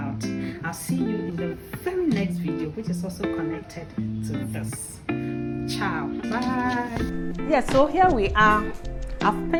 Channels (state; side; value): identical; both; correlation 1.00